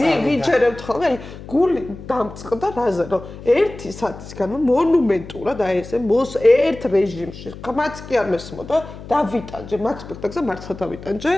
ვიჯერებთ ხოლმე, აი გული დამწყდა რაზე, რომ 1 საათის განმავლობაში მონუმენტურად აი ესე ერთ რეჟიმში ხმაც კი არ მესმოდა დავიტანჯე მაგ სპექტაკლზე მართლა დავიტანჯე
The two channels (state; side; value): noise; left; hum, 14 dB below the sound